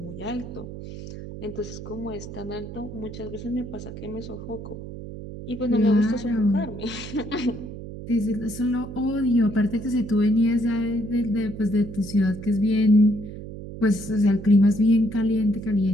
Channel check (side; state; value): right; noise; hum, 11 dB below the sound